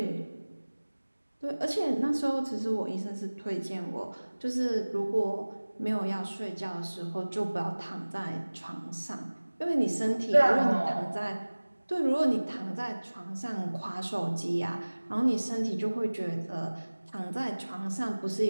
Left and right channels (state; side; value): inverted; both; correlation -1.00